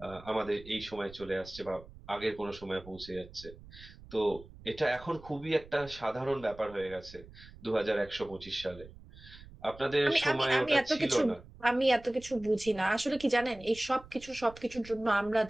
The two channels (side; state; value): right; noise; rumble, 19 dB below the sound